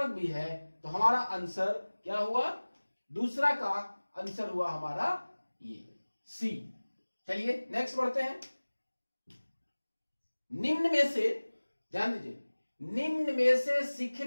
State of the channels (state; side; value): inverted; both; correlation -1.00